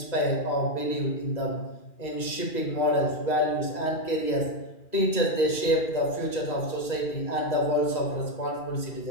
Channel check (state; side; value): late; right; 2.4 ms